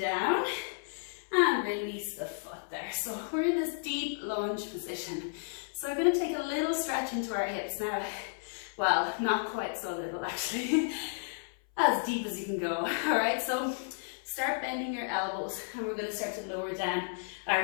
and release the foot there. So we're in this deep lunge position. So we're going to take a little stretch into our hips now. Well, not quite so little actually. As deep as you can go. All right, so start bending your elbows and we're going to start to lower down our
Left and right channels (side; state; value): right; silent; 56 dB below the other